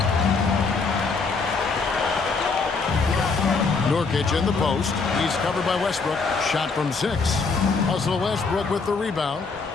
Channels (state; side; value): quieter; right; 4.5 dB